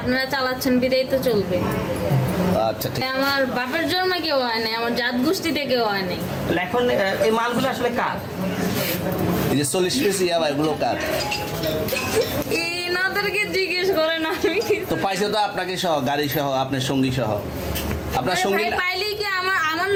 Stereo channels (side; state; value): both; identical; correlation 1.00